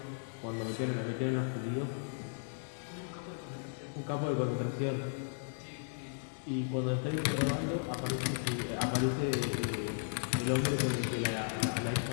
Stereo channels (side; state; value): right; silent; digital silence